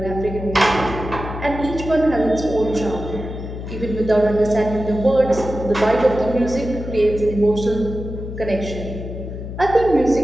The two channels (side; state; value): left; noise; hum, 8 dB below the sound